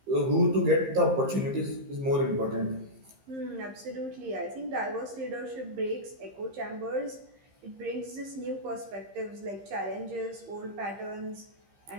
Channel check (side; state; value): left; late; 15 ms